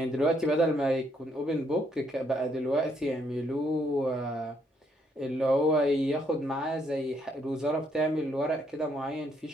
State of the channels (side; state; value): both; normal; correlation 0.72